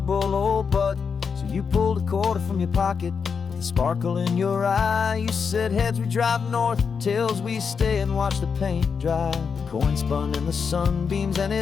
old butt. So you pulled a quarter from your pocket with a sparkle in your eye. You said, heads we drive north, tails we stay and watch the paint dry. The coin spun in the sunbeams and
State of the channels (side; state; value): right; quieter; 6.0 dB